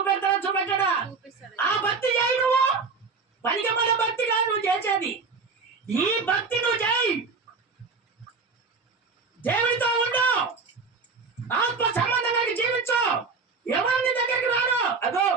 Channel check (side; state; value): left; quieter; 4.6 dB